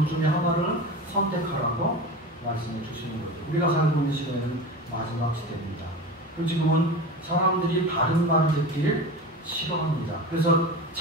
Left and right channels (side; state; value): both; normal; correlation 0.30